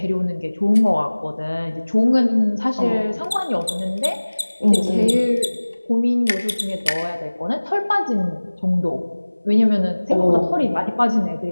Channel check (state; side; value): inverted; both; correlation -1.00